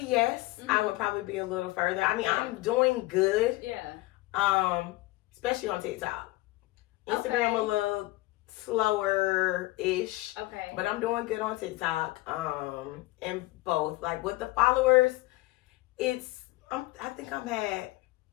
yes. I would probably be a little further. I mean, I'm doing good. Yeah. Especially on TikTok. Instagram a little slower-ish. Okay. But I'm doing good on TikTok. And both. Like with the followers, I think I'm at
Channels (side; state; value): right; quieter; 19.9 dB